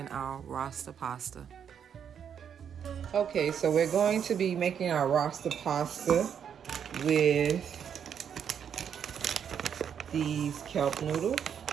our Rasta pasta. Okay, so we're going to be making our Rasta pasta with these kelp noodles.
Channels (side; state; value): left; quieter; 8.1 dB